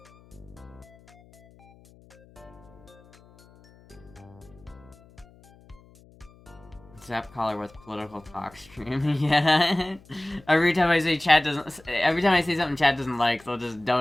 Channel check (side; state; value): left; noise; hum, 26 dB below the sound